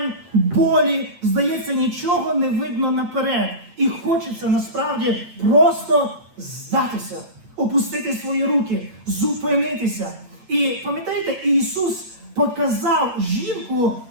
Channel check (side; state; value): left; late; 8.4 ms